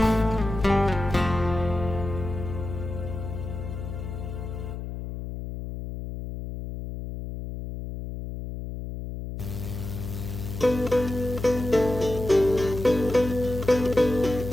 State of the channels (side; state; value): left; noise; hum, 7 dB below the sound